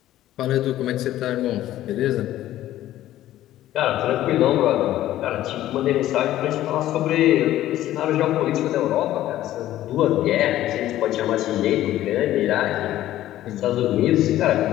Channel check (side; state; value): right; quieter; 13.8 dB